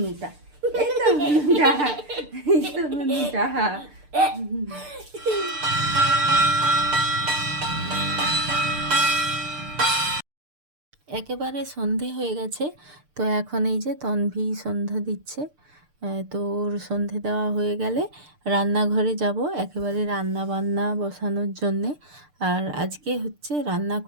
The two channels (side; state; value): left; late; 6.7 ms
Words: এই তো হুনুটা, এই তো হুনুটা। একেবারে সন্ধে হয়ে গেছে, তো এখন এই যে তনভি সন্ধ্যা দিচ্ছে। তো ওর সন্ধে দেওয়া হয়ে গেলে রান্নাঘরে যাব একেবারে রান্না বান্না বসানোর জন্যে। আর আজকে হচ্ছে রান্না